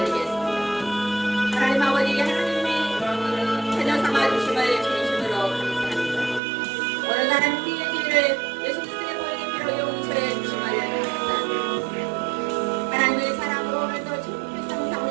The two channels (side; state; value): left; drops out; at 6.4 s